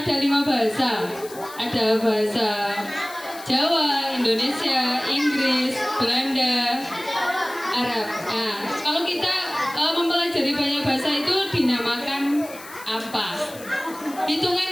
ada 5 bahasa. Ada bahasa Jawa, Indonesia, Inggris, Belanda, Arab. Nah, kalau kita mempelajari banyak bahasa itu dinamakan apa? Hitungan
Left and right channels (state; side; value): noise; left; hiss, 17 dB below the sound